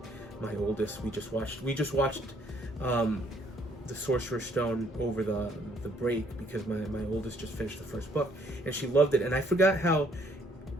My oldest, we just watched the Sorcerer's Stone over the break because my oldest just finished the first book and she loved it. And I forgot how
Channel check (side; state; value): both; normal; correlation 0.65